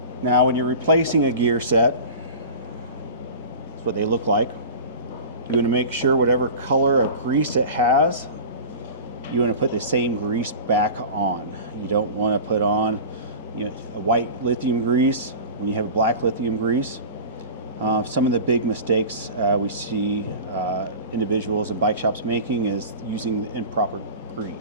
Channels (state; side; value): inverted; both; correlation -0.35